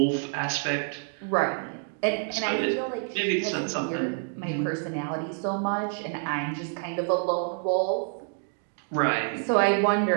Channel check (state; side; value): silent; left; 60 dB below the other